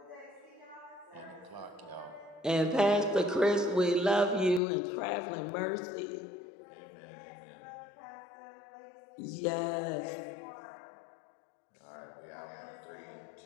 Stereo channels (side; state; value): right; drops out; at 4.6 s